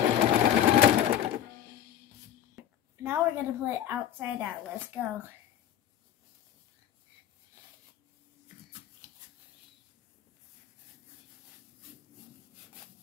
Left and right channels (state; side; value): quieter; right; 10.6 dB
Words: Now we're going to put it outside out. Let's go.